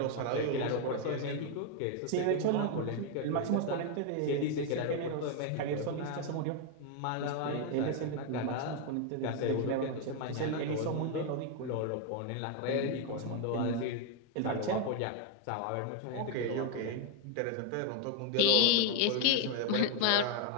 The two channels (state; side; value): different; both; correlation 0.01